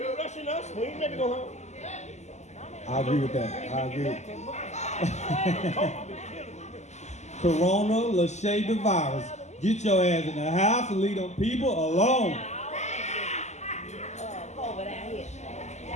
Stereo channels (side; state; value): right; late; 0.33 ms